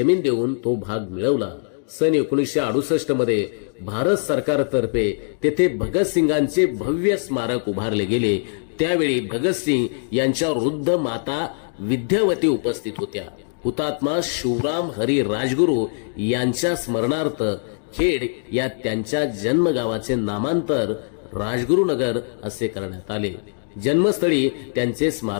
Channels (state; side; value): silent; right; 63 dB below the other